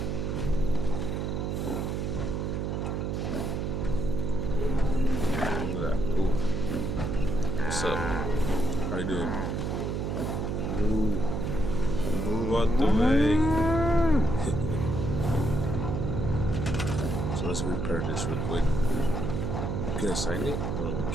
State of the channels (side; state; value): right; noise; hum, 1 dB below the sound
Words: Look at that. Ooh. What's up? How you doing? Move. Move out the way. So let's repair this real quick. Can I sign it? Oh, no, we